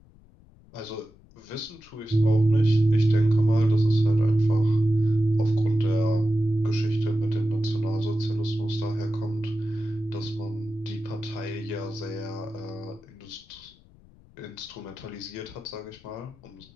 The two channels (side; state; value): left; noise; rumble, 26 dB below the sound